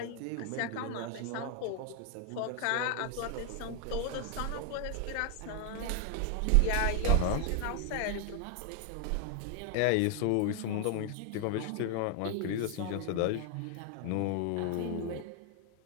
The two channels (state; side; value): different; both; correlation 0.00